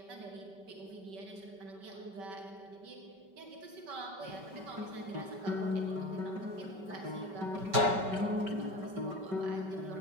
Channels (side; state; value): left; late; 5.2 ms